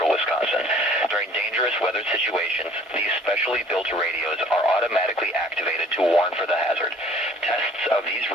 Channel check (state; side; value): normal; both; correlation 0.53